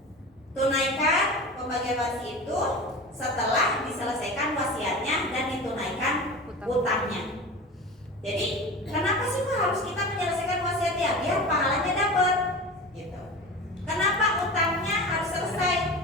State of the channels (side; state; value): both; normal; correlation 0.31